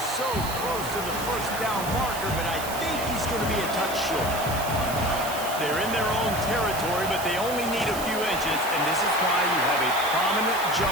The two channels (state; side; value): noise; right; hiss, 9 dB below the sound